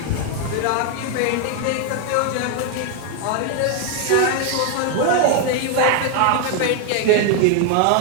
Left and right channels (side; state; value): both; different; correlation 0.01